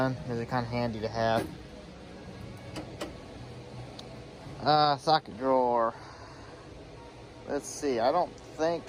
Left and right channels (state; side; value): identical; both; correlation 1.00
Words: they're kind of handy to have. Socket drawer. Let's see, I don't think